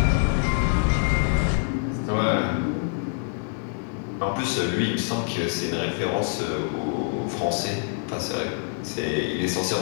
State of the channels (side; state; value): right; silent; 61 dB below the other